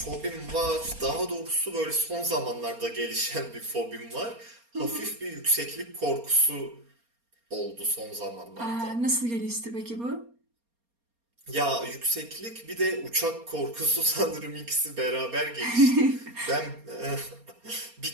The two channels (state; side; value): late; left; 4.3 ms